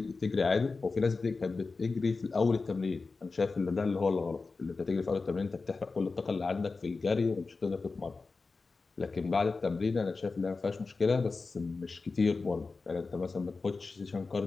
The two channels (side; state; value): right; quieter; 4.1 dB